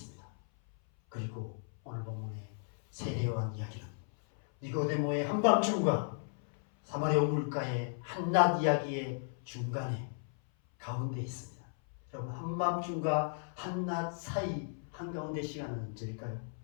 그리고 오늘 본문의 세례요한 이야기는 니고데모의 한밤중과 사마리아 우물가의 한낮 이야기의 중간에 가운데 있습니다. 여러분, 한밤중과 한낮 사이 한가운데 시간은 언제일까요?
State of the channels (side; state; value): right; silent; 54 dB below the other